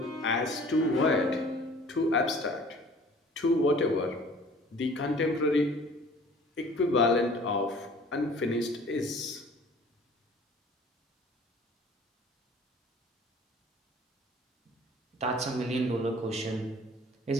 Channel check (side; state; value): both; normal; correlation 0.49